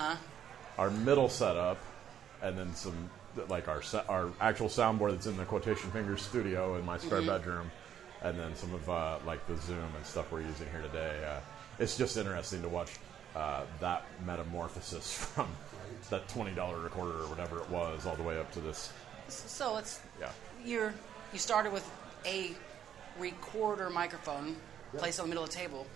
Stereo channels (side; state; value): left; quieter; 9.6 dB